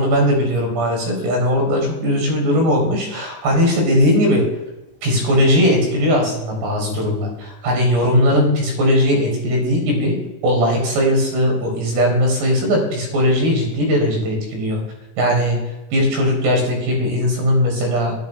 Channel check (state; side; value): late; left; 19 ms